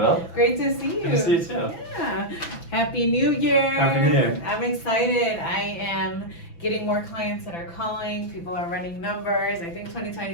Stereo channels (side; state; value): right; late; 5.9 ms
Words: Great to see you. Good to see you too. Yeah. Happy New Year. Happy New Year. I'm excited. I am getting more clients that are calling. People are running numbers. I think